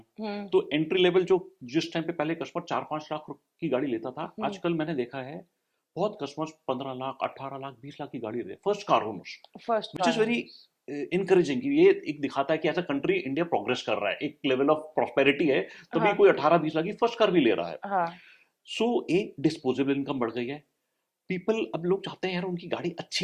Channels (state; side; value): identical; both; correlation 1.00